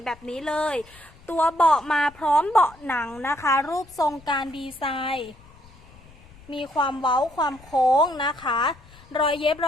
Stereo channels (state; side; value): noise; left; rumble, 24 dB below the sound